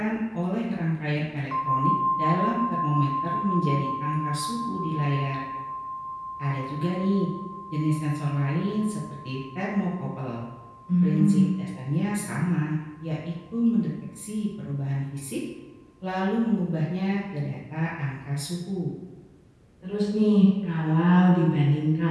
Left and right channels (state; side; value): identical; both; correlation 1.00